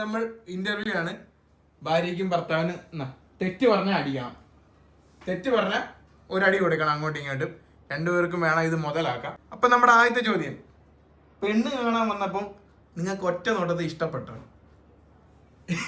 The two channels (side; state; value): both; identical; correlation 1.00